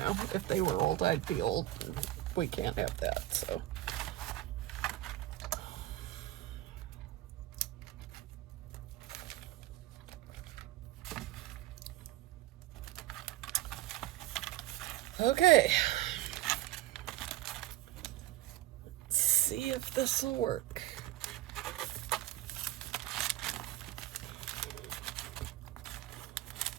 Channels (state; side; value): quieter; left; 15.3 dB